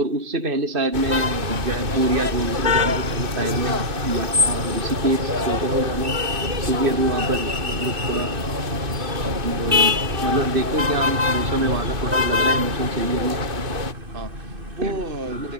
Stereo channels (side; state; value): left; late; 2.5 ms